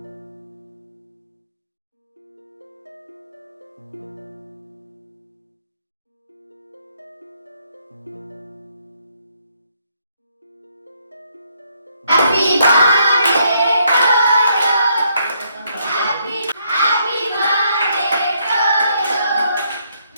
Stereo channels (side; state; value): both; inverted; correlation -0.72